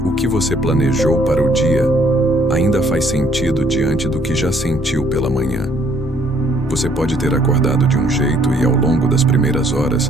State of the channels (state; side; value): normal; both; correlation 0.64